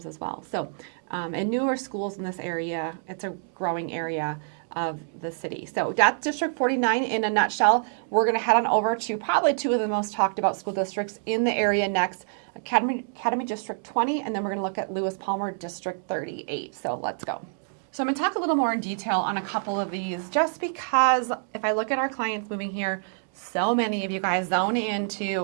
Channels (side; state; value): left; silent; digital silence